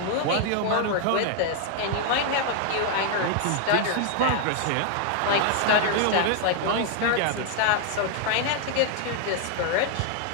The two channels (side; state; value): both; different; correlation 0.00